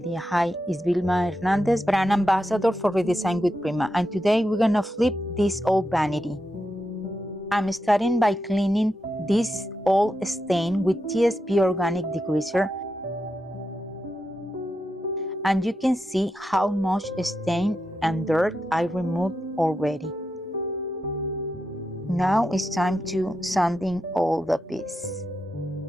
Hi, it's Vilma Hernandez, brand ambassador for Redesign with Prima, and today we're gonna flip this old vanity. I'm starting by cleaning this old stain with TSP organic degreaser, and you can see how much stain and dirt I removed already. Now it's time to sanding all the pieces.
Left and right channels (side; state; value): both; normal; correlation 0.86